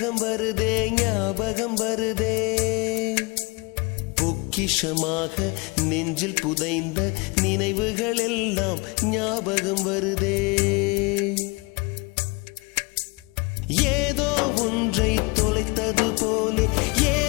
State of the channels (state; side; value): quieter; right; 27.0 dB